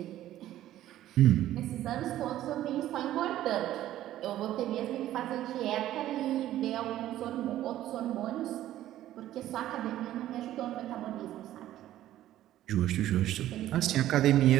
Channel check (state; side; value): quieter; left; 13.3 dB